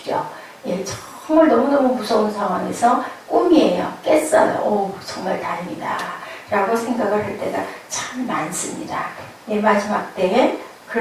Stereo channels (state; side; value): identical; both; correlation 1.00